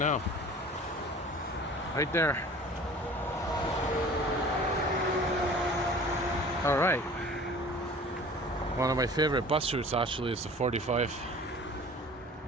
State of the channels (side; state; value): both; normal; correlation 0.45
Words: Right there. All right. One of my favorite bus routes actually is the 45.